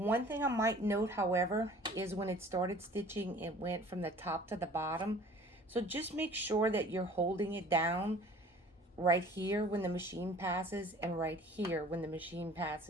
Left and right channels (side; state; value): both; normal; correlation 0.48